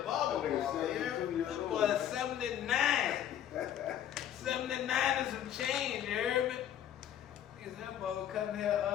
barber. That nigga 72 years That old. boy 79. 79 and some change, you heard me? Nigga, that boy was cutting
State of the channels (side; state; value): right; quieter; 10.6 dB